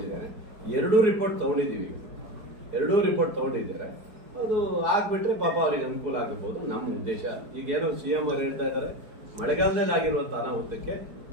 2 ರಿಪೋರ್ಟ್ ತೊಗೊಂಡಿದ್ದೀವಿ, 2 ರಿಪೋರ್ಟ್ ತೊಗೊಂಡಿದ್ದಾರೆ. ಅದು ಆಗ್ಬಿಟ್ರೆ ಪಾಪ ಅವ್ರಿಗೆ ಅನುಕೂಲ ಆಗಿರ್ಬೋದು ನಮ್ಮ ಉದ್ದೇಶ. ಈಗೇನೋ CM ಅವರು ಹೇಳ್ತಾ ಇದ್ದಾರೆ, ಮಳೆಗಾಲದಲ್ಲಿ ಆಗಿರುವಂಥ ಅನಾಹುತಕ್ಕೆ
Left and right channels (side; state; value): left; late; 4.7 ms